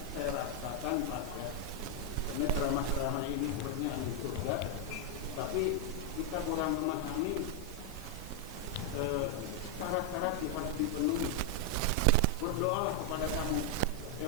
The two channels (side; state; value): left; noise; hiss, 20 dB below the sound